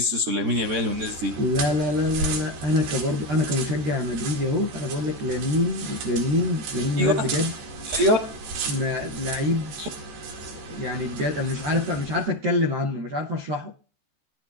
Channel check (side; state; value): left; late; 14 ms